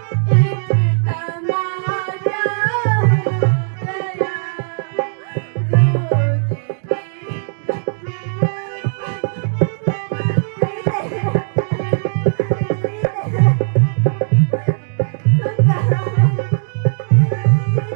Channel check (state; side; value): silent; left; digital silence